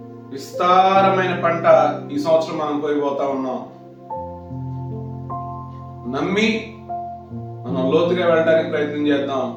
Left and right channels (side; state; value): both; identical; correlation 1.00